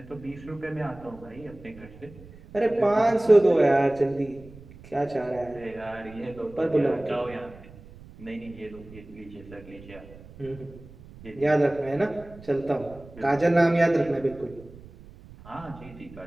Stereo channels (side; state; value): right; noise; rumble, 19 dB below the sound